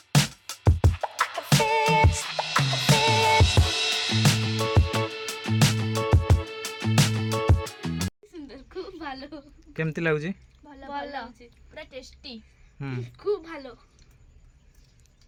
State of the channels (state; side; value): identical; both; correlation 1.00